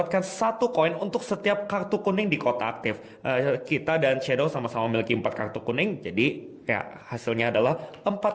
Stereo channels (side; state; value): both; identical; correlation 1.00